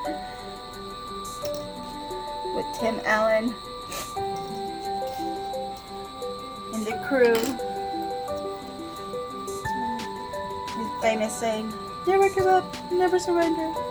With Tim Allen and the crew. His famous saying, Never give up, never surrender.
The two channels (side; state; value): both; identical; correlation 1.00